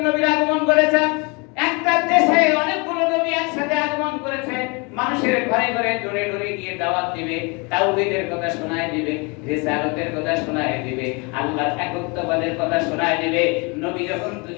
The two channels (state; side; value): quieter; right; 30.0 dB